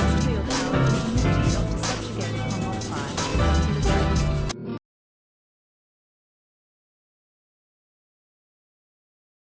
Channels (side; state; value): both; identical; correlation 1.00